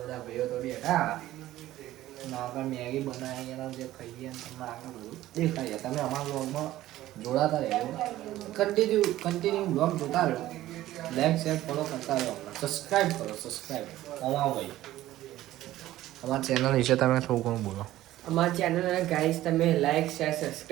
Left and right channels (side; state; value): left; quieter; 14.9 dB